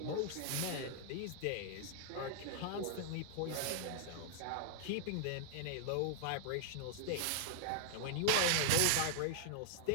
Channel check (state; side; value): different; both; correlation 0.00